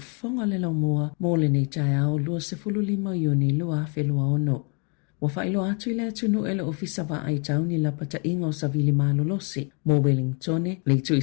le lau moa mo le nei tai au lua se fulu lima iuni lua whelua ono. Wa whailo atu le atunu ele ofisa wa ai tau ni la pata inga o savili malolosi mo Wellingtone le tu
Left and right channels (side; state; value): right; quieter; 36.1 dB